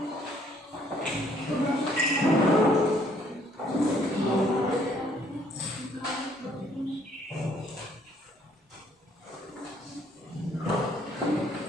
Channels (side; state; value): both; normal; correlation 0.64